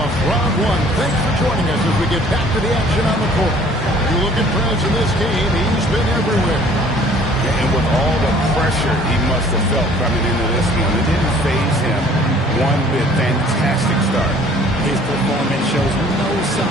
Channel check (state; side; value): normal; both; correlation 0.54